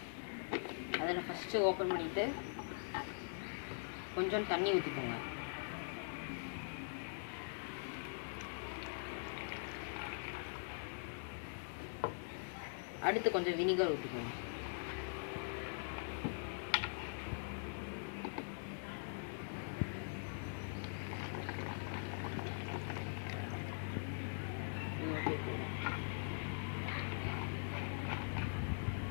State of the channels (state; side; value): silent; right; digital silence